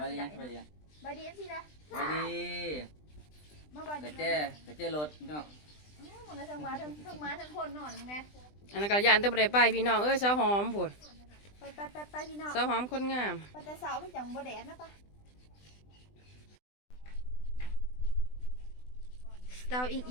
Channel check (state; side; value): late; right; 20 ms